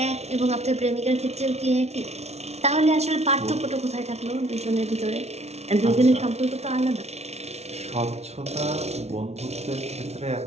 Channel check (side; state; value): left; late; 0.31 ms